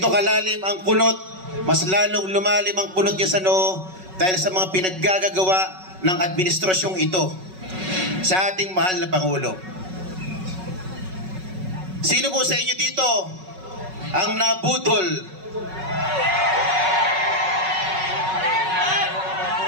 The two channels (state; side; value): late; left; 5.4 ms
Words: kalalim ang kunot, mas lalong lumalim ang kunot niya sa noo dahil sa mga pinaggagawa ng administrasyong ito sa ating mahal na Pangulo. Sino po sa inyo dito ang nabudol